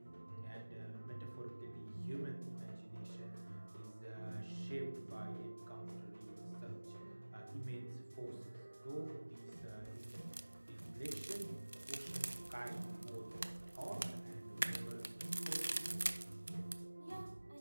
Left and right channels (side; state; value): both; inverted; correlation -1.00